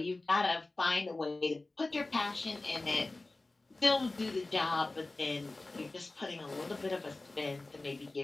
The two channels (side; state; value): right; quieter; 3.1 dB